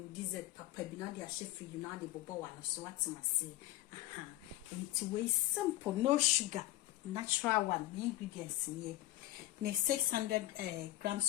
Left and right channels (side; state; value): right; quieter; 16.7 dB